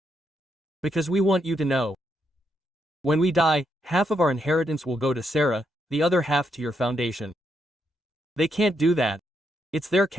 Because we want you to know. When we die, half of our inheritance will go to Sarah, the other half to your foundation. They can't do that. It's their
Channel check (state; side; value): normal; both; correlation 0.79